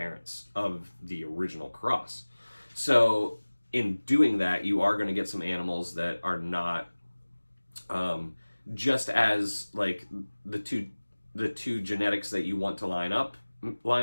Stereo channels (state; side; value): inverted; both; correlation -1.00